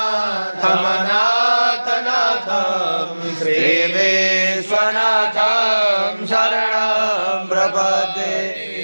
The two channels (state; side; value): inverted; both; correlation -1.00